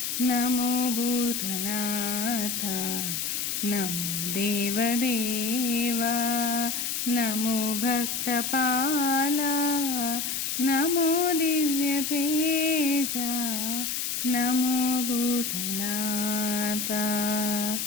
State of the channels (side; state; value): left; noise; hiss, 1 dB below the sound